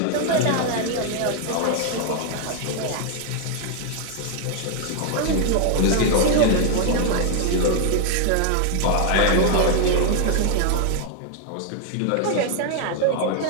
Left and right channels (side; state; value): both; different; correlation 0.00